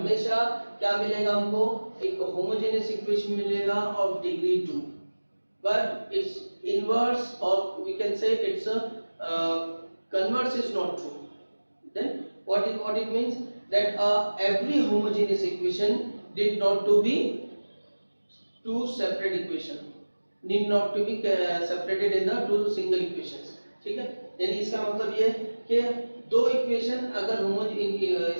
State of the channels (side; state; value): both; inverted; correlation -1.00